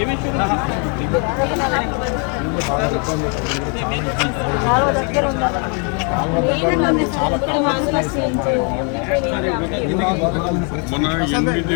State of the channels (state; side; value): quieter; right; 37.5 dB